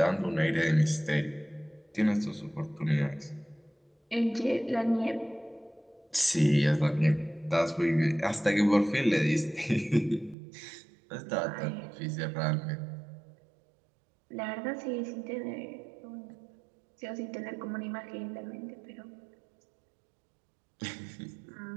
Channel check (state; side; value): drops out; left; at 10.4 s